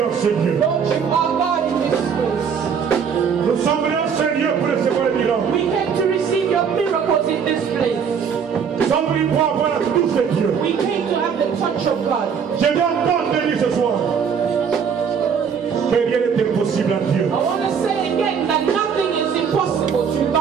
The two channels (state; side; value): quieter; left; 6.9 dB